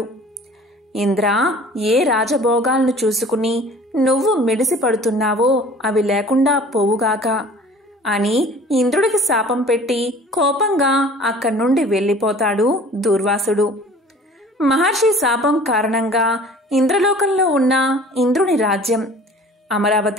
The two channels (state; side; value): normal; both; correlation 0.47